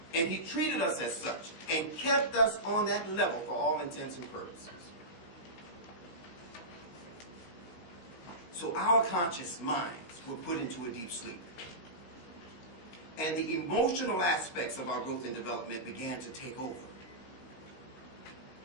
And he treated us as such and kept us on that level for all intents and purposes. So our conscious minds were put into a deep sleep. And the emotional aspects of our growth and development began to take over.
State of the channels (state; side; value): late; right; 17 ms